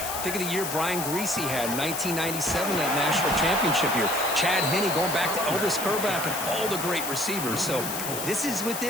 think of the year Brian Greasy had, 1997, that national championship year. Chad Henne going back to Elvis Kerback and all the great receivers. So this is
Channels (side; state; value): left; noise; hiss, 5 dB below the sound